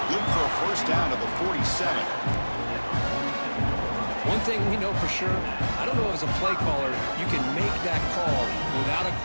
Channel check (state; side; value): inverted; both; correlation -1.00